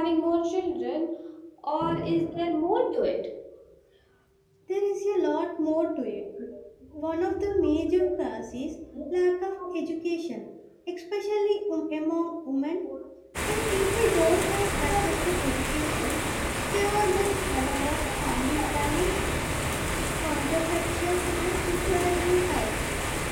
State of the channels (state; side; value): identical; both; correlation 1.00